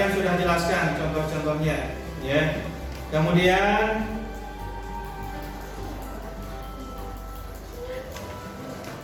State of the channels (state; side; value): identical; both; correlation 1.00